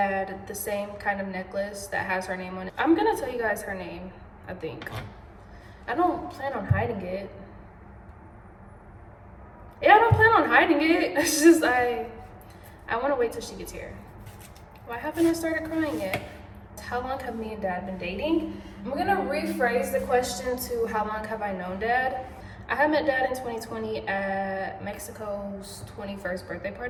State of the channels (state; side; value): identical; both; correlation 1.00